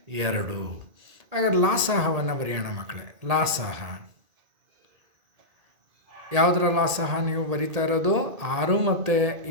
2. ಹಾಗಾದ್ರೆ ಲಾಸಾಹವನ್ನು ಬರೆಯೋಣ ಮಕ್ಕಳೇ. ಲಾಸಾಹ ಯಾವುದರ ಲಾಸಾಹ ನೀವು ಬರಿತಾ ಇರೋದು? 6 ಮತ್ತು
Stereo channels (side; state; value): left; late; 1.8 ms